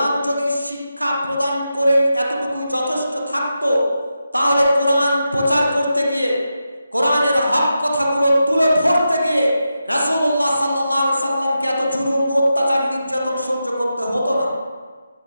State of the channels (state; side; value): inverted; both; correlation -0.89